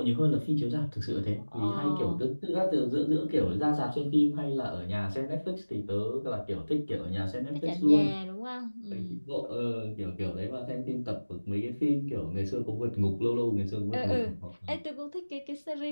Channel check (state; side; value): inverted; both; correlation -1.00